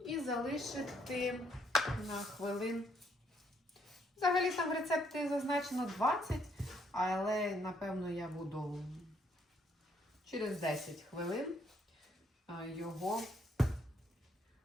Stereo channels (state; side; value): normal; both; correlation 0.70